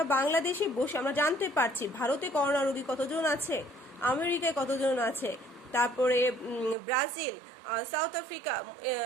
বাংলাদেশে বসে আমরা জানতে পারছি ভারতে করোনা রোগী কতজন আছে, আমেরিকায় কতজন আছে, তারপরে ব্রাজিল, সাউথ আফ্রিকা,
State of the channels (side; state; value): left; drops out; at 6.8 s